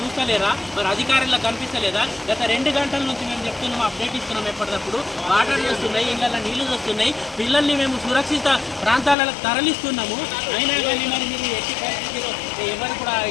మరి అధికారులకు కనిపిస్తలేదా? గత 2 గంటల నుంచి మేము చెప్తున్నాము, అప్డేట్ ఇస్తున్నాం. ఎప్పటికప్పుడు వాటర్ వస్తున్నాయి, ఇళ్ళల్లో నీళ్లు వస్తున్నాయి, పిల్లల్ని మేము సురక్షిత ప్రాంతాలకు తరలిస్తున్నాము. అయినా కానీ మరి మీరు ఎట్టి పరిస్థితిలో ఎవరు కూడా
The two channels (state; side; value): drops out; right; at 9.2 s